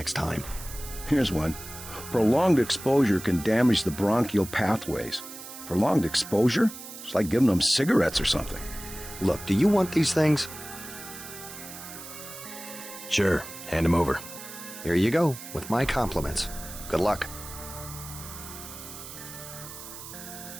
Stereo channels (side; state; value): right; noise; hiss, 13 dB below the sound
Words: time. Here's one. Prolonged exposure can damage the bronchial pathways. Prolonged exposure? It's like giving them cigarettes or something. Look, do you want these things? Sure. Hand them over. Here you go, with my compliments. Good luck.